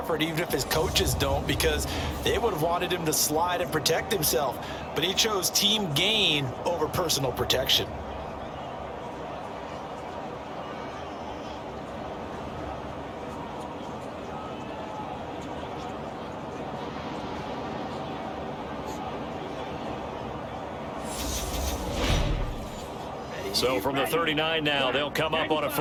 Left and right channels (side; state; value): both; identical; correlation 1.00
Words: even if his coaches don't, because they would have wanted him to slide and protect himself. But he chose team gain over personal protection. So from the 39 now, they'll come up on a